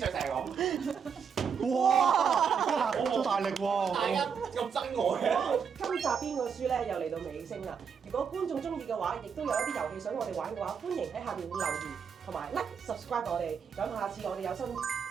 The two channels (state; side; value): quieter; left; 6.6 dB